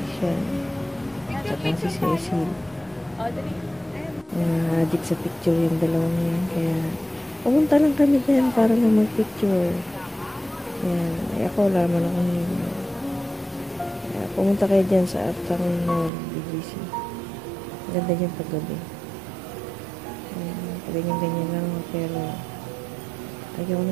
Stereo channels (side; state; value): left; drops out; at 16.1 s